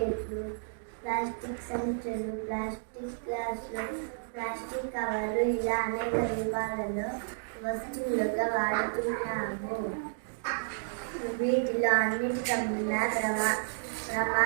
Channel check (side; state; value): left; silent; digital silence